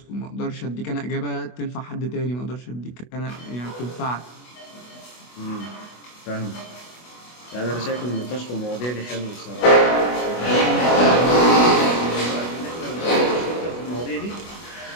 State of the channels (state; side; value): late; right; 24 ms